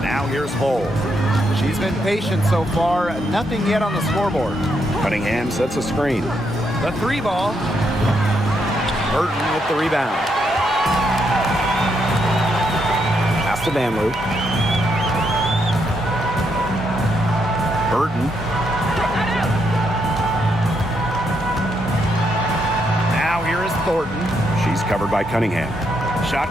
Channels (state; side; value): normal; both; correlation 0.78